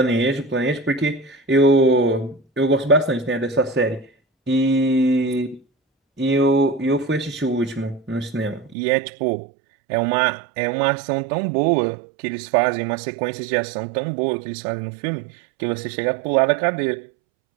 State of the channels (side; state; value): left; drops out; at 8.8 s